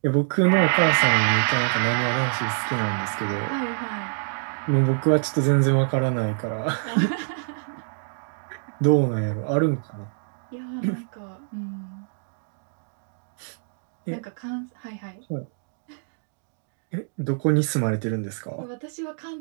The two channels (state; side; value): silent; left; digital silence